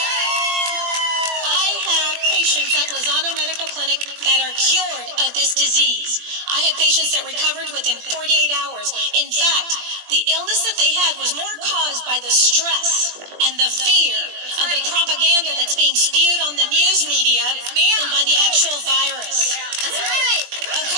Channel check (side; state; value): left; late; 20 ms